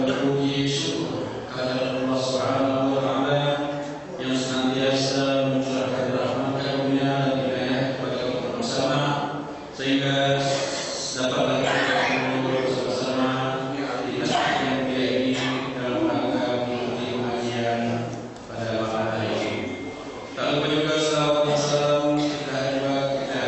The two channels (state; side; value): identical; both; correlation 1.00